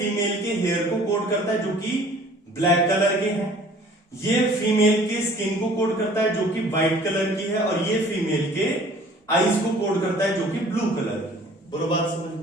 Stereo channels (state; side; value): normal; both; correlation 0.51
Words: के हेयर को कोड करता है जो कि ब्लैक कलर के हैं, ये फीमेल के स्किन को कोड करता है जो कि व्हाइट कलर की है, और ये फीमेल के आईज को कोड करता है जो कि ब्लू कलर की है। बोलो बात समझ